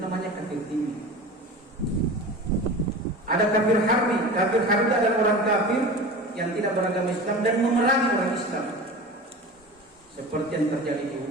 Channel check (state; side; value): normal; both; correlation 0.33